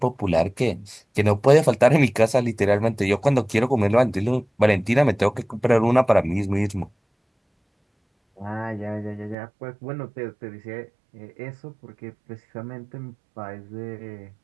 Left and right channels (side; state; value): left; drops out; at 9.3 s